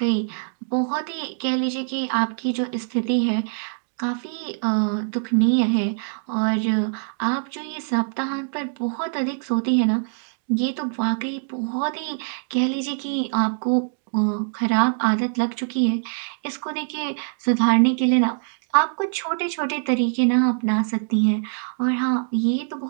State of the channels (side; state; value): left; silent; digital silence